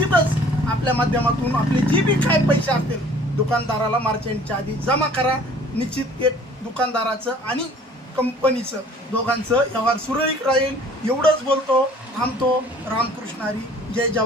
आपल्या माध्यमातून आपले जे बी काय पैसे असतील दुकानदाराला मार्च एंडच्या आधी जमा करा। निश्चित एक दुकानदाराचं आणि कंपनीचं दोघांचं व्यवहार सुरळीत राहील। एवढंच बोलतो, थांबतो। रामकृष्ण हरी, जय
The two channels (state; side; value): normal; both; correlation 0.52